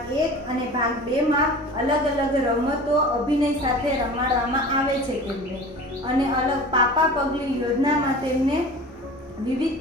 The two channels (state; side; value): normal; both; correlation 0.38